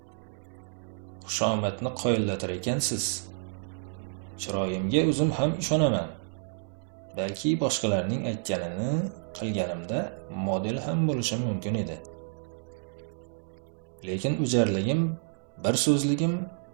Xushomadni qoyillatar ekansiz. Chiroyimga o'zim ham ishonaman. Balki boshqalarning aytganini qilganimda model ham bo'lishim mumkin edi. Lekin o'jarligim, bir so'zligim,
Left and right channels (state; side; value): silent; left; digital silence